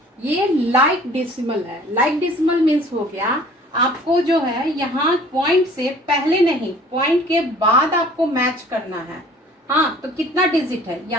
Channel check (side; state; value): both; normal; correlation 0.50